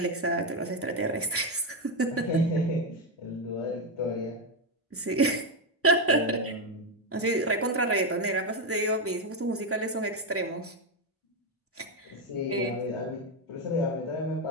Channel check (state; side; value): normal; both; correlation 0.06